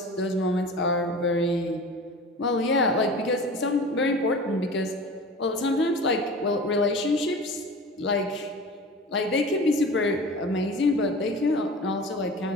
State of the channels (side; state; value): both; normal; correlation 0.37